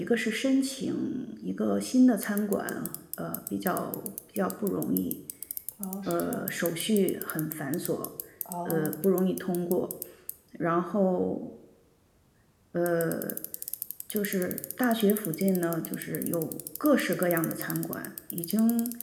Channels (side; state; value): both; identical; correlation 1.00